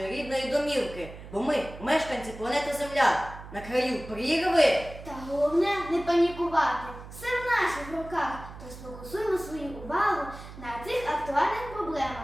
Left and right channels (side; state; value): right; noise; hum, 14 dB below the sound